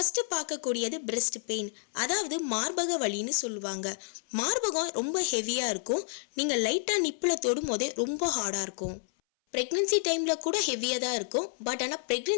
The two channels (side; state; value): right; silent; 58 dB below the other